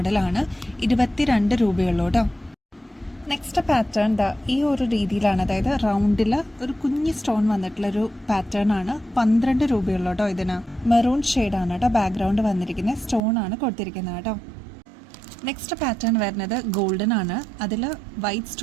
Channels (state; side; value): drops out; left; at 13.2 s